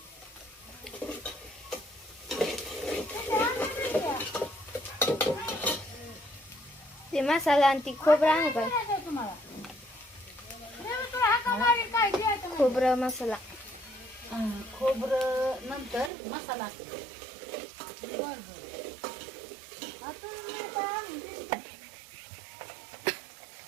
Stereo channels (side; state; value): left; drops out; at 16.1 s